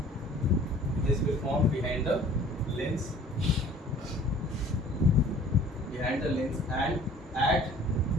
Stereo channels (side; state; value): both; normal; correlation 0.50